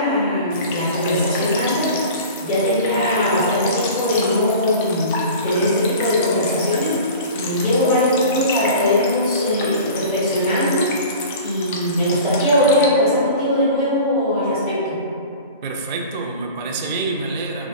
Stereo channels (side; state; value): both; inverted; correlation -0.38